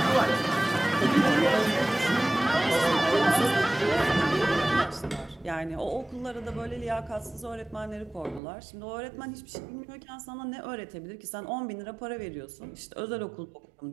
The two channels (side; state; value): left; drops out; at 8.4 s